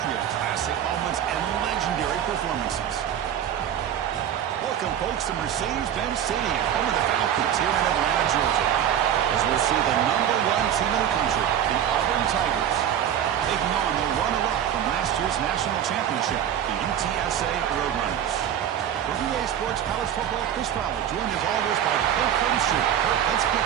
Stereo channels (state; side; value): quieter; left; 9.9 dB